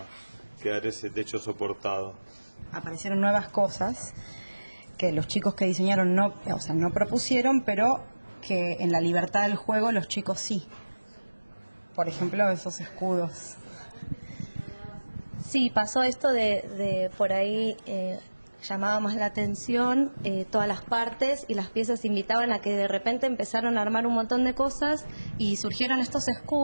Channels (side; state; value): both; inverted; correlation -1.00